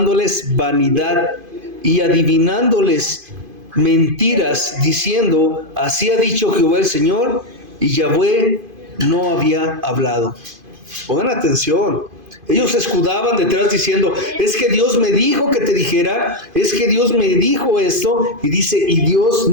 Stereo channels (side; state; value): left; late; 2.5 ms